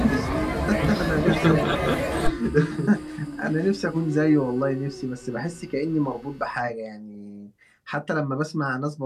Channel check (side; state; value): both; identical; correlation 1.00